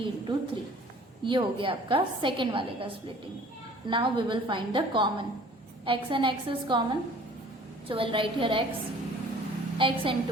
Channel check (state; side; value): normal; both; correlation 0.50